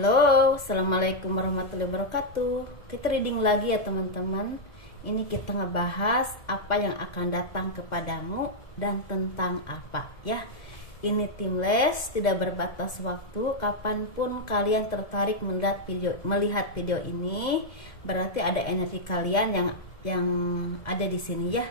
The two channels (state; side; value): late; right; 2.0 ms